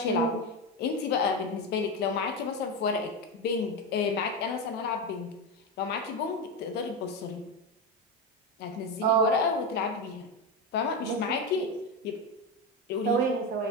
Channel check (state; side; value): normal; both; correlation 0.14